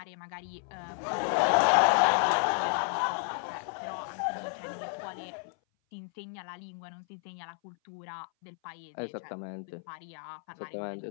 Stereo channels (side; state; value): right; silent; 57 dB below the other